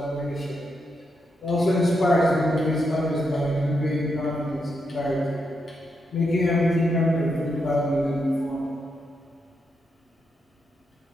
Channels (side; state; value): both; normal; correlation 0.83